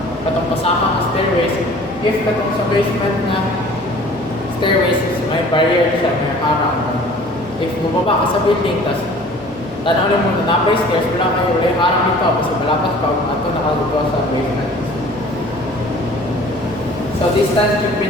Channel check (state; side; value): normal; both; correlation 0.48